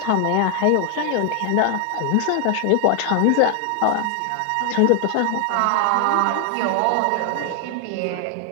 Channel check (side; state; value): both; different; correlation 0.00